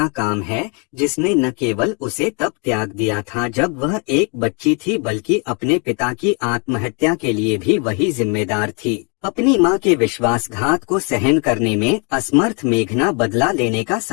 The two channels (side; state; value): right; quieter; 35.1 dB